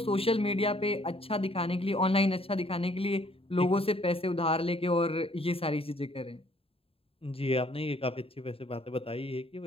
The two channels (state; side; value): late; right; 0.27 ms